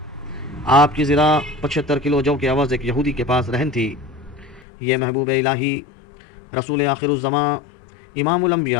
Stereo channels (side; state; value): right; drops out; at 4.7 s